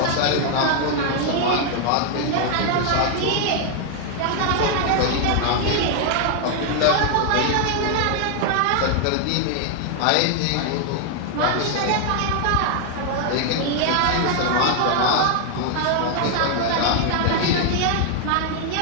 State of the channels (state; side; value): different; both; correlation 0.00